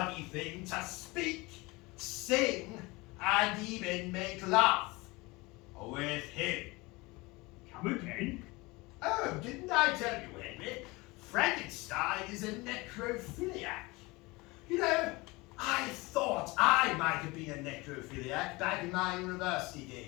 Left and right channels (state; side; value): quieter; right; 23.6 dB